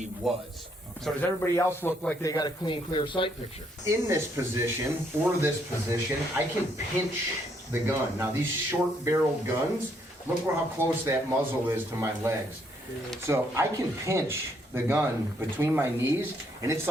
was. Okay. So does everybody else look like they got a clean, clear sight picture? In this position, or this position, I can pinch the gun. Now, these short-barreled guns, look how close that muzzle is to my legs. So I can pinch the gun between my knees, and it's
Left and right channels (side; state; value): both; normal; correlation 0.71